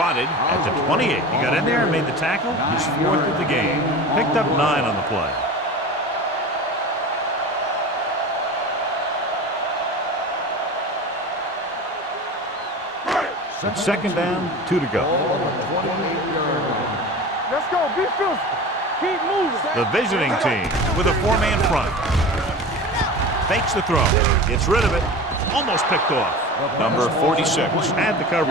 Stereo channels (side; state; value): both; normal; correlation 0.33